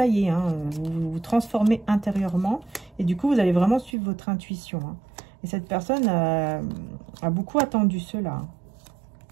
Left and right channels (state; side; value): drops out; left; at 4.0 s